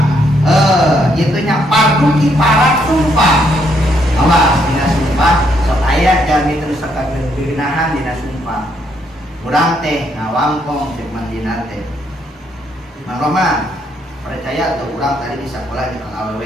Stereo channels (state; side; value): normal; both; correlation 0.73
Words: itunya fardu kifarat sumpah. Awas dina sumpah sok aya jami terus sakabeun geunahan dina sumpah. Urang teh ngawangkong ceuk Mang Dinar teh. Mang Roma percaya tuh urang tadi di sakola di Kang